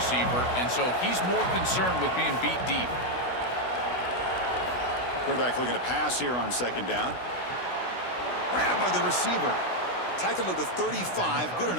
and so he's more concerned with being beat deep. Quarterback looking to pass here on 2nd down. Grabbed by the receiver. Tackled at the 35, good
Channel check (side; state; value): right; late; 16 ms